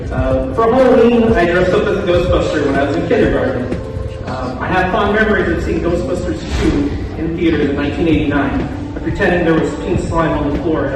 For Halloween, I dressed up as a Ghostbuster when I was in kindergarten. I have fond memories of seeing Ghostbusters 2 in theaters in 1989, pretending there was pink slime on the floor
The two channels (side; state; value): both; identical; correlation 1.00